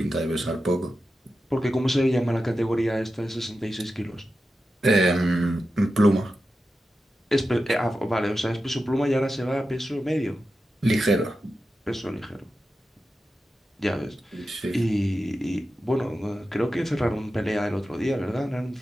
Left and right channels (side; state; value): both; normal; correlation 0.91